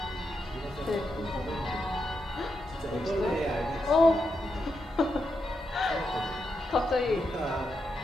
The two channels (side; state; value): both; normal; correlation 0.84